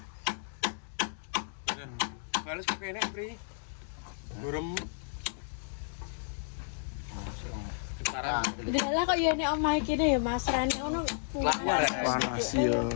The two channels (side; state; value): right; silent; digital silence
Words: Balas kok enak, Pri. Gurem. Sekarang Dalah kok ya nek omah iki ya Mas Rani ngono. Panas ya.